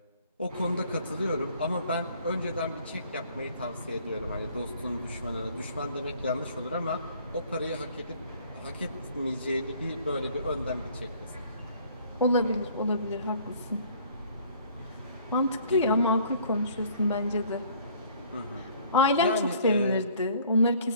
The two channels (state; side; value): inverted; both; correlation -0.56